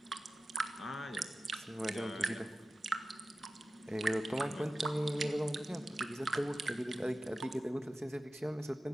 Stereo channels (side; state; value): both; normal; correlation 0.95